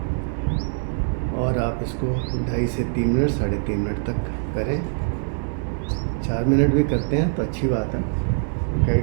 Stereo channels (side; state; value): left; silent; 61 dB below the other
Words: और आप इसको 2.5 से 3 मिनट, 3.5 मिनट तक करें। 4 मिनट भी करते हैं तो अच्छी बात है, क्या